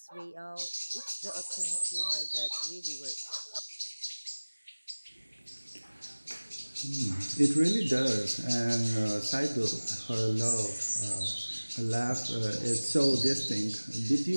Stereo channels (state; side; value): inverted; both; correlation -1.00